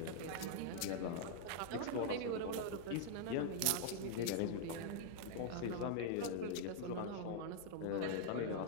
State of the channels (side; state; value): both; different; correlation -0.01